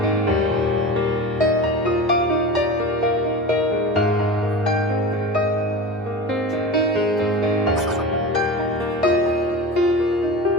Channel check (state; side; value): normal; both; correlation 0.31